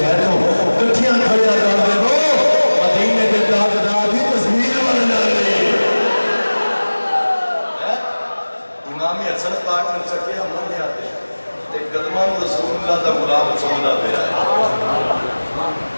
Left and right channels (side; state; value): both; inverted; correlation -1.00